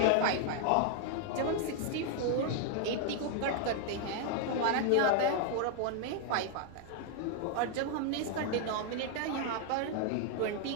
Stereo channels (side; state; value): both; different; correlation 0.00